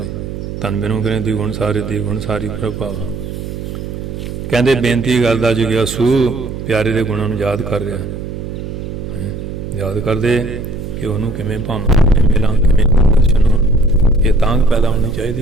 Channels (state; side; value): noise; right; hum, 7 dB below the sound